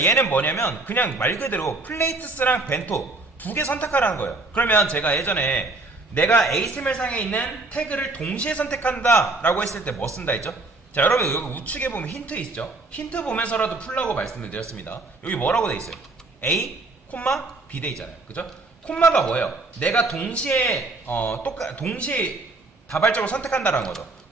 얘는 뭐냐면 그냥 말 그대로 플레이트스랑 벤토 두 개 선택하라는 거예요. 그러면 제가 예전에 내가 HTML상에 있는 태그를 동시에 선택한다 라고 했을 때 뭐 쓴다 했죠? 자, 여러분 여기 우측에 보면 힌트 있죠? 힌트 보면서라도 풀라고 말씀을 드렸습니다. 여기 뭐라고 돼 있어요? A, B 돼 있잖아요. 그죠? 콤마가 뭐예요? 내가 동시에 동시에 다발적으로 선택한다라는 거죠.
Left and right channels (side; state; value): left; quieter; 3.2 dB